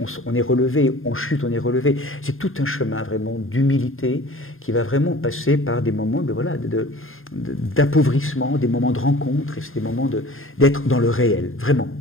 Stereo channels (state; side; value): late; right; 0.60 ms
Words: on est relevé, on chute, on est relevé. C'est tout un chemin vraiment d'humilité qui va vraiment passer par des moments d'appauvrissement, des moments de rencontre, et c'est des moments d'être dans le réel, vraiment.